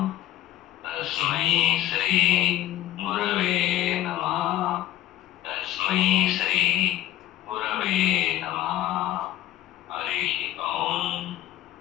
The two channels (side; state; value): right; quieter; 13.3 dB